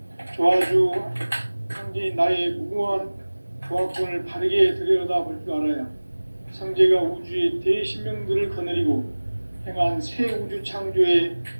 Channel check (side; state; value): both; inverted; correlation -1.00